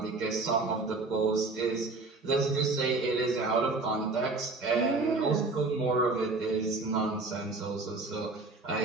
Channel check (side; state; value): left; quieter; 3.6 dB